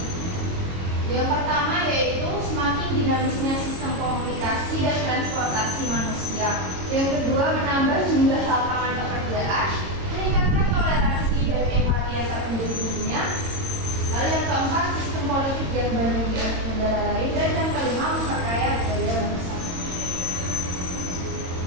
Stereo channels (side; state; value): left; late; 22 ms